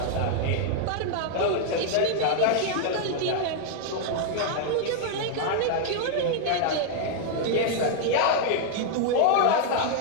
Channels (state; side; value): different; both; correlation 0.00